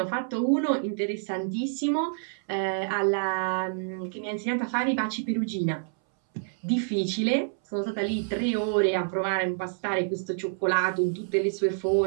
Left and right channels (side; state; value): left; silent; 60 dB below the other